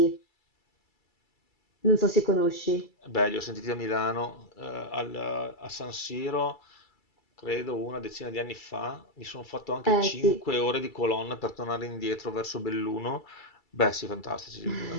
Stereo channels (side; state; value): right; late; 2.3 ms